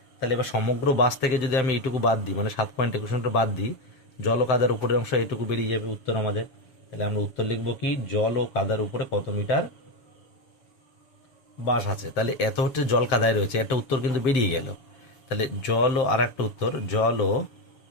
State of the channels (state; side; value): late; right; 7.2 ms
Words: তাহলে এবার সমগ্র বাস থেকে যদি আমি এইটুকু বাদ দিই, মানে 7.21 মিটার বাদ দিই, জল ও কাদার উপরের অংশ এইটুকু বেরিয়ে যাবে উত্তর আমাদের। তাহলে আমরা উত্তর লিখবো কি, জল ও কাদার উপরে কত মিটার বাস আছে। তাহলে এত হচ্ছে জল কাদায় রয়েছে, একটা উত্তর কিন্তু বেরিয়ে গেল। তাহলে জল ও আর একটা উত্তর, জল ও